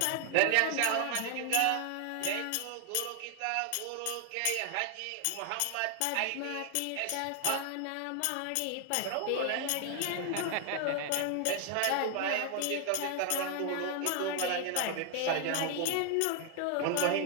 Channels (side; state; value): both; different; correlation 0.00